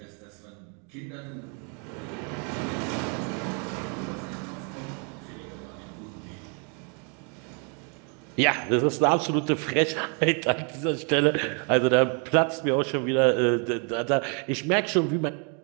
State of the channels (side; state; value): left; quieter; 37.6 dB